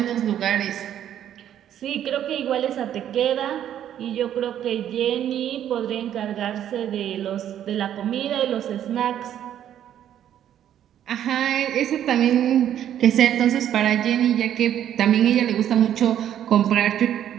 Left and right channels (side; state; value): left; quieter; 10.6 dB